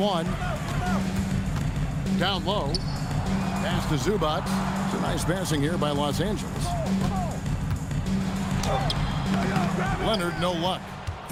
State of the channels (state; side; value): identical; both; correlation 1.00